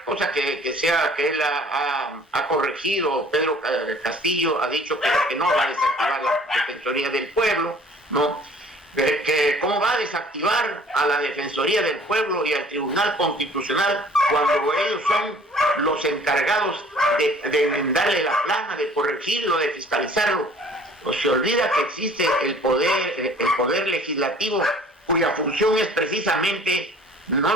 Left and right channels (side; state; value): both; normal; correlation 0.52